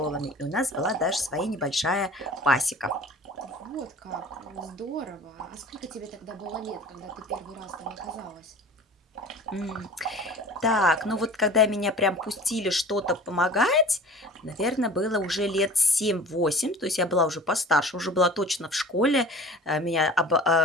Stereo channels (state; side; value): normal; both; correlation 0.42